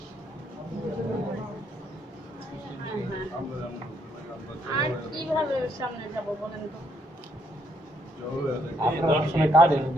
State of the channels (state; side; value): normal; both; correlation 0.72